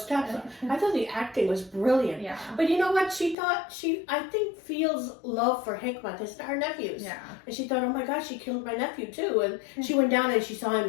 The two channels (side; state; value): right; drops out; at 3.4 s